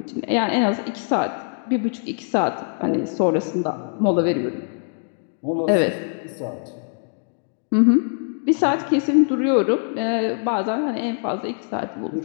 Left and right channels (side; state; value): right; silent; 64 dB below the other